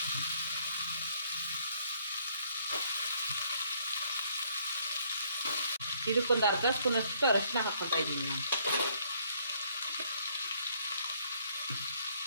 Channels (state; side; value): inverted; both; correlation -0.66